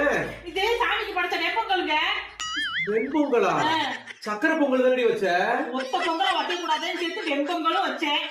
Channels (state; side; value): identical; both; correlation 1.00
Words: இதே சாமிக்கு படைச்ச வெப்பங்களுங்க. வெண்பொங்கலா? சக்கரை பொங்கல் தானடி வச்ச? ஒத்த பொங்கலை வைக்க கூடாதுன்னு சேர்த்து வெண்பொங்கலும் வச்சேன்.